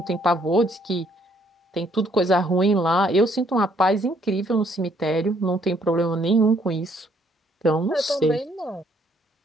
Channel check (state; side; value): normal; both; correlation 0.67